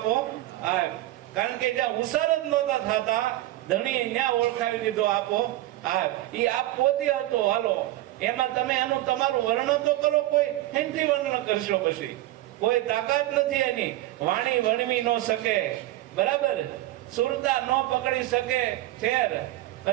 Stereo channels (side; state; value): left; quieter; 16.0 dB